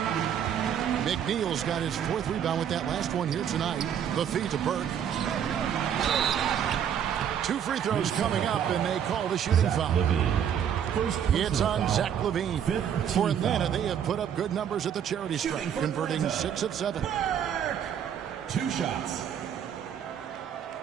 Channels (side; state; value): left; quieter; 8.9 dB